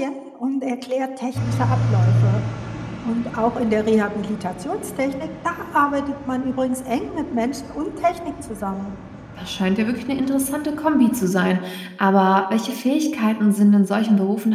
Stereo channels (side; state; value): both; identical; correlation 1.00